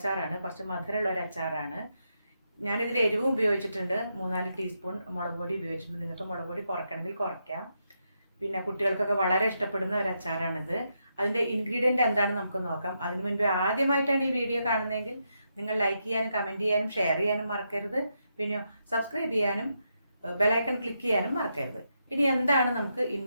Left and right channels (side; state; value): both; inverted; correlation -0.82